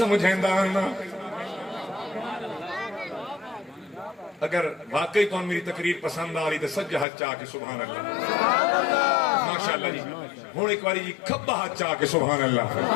نا اگر واقعی تو میری تقریر پسند آ رہی تو سجا ہاتھ چاہ کے سبحان اللہ ماشاءاللہ جی ہوں ایک باری جی کھبا ہاتھ چاہ کے سبحان اللہ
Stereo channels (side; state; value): right; drops out; at 7.1 s